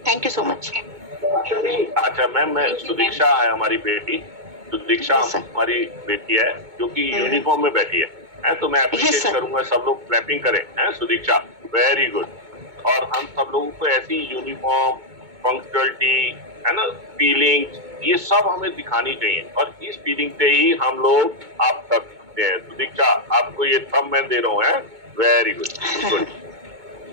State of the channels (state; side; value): late; left; 2.2 ms